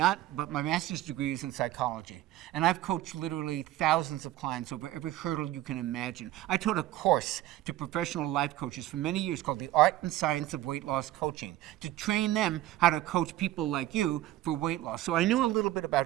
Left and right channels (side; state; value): left; quieter; 14.9 dB